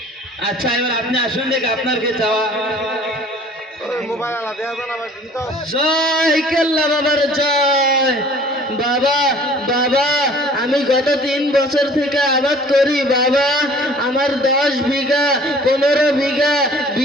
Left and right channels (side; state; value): both; normal; correlation 0.50